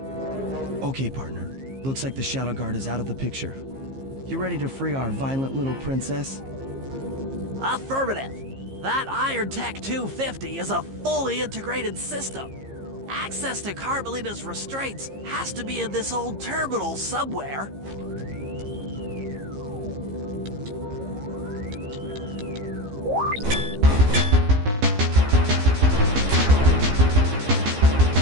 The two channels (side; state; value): left; late; 15 ms